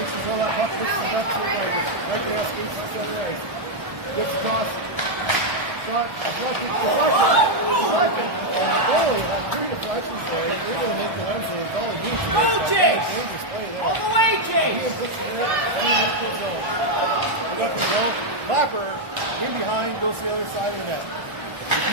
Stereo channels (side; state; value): left; late; 1.3 ms